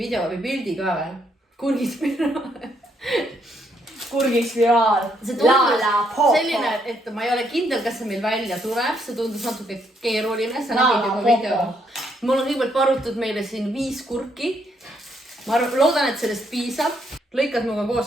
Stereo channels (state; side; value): normal; both; correlation 0.73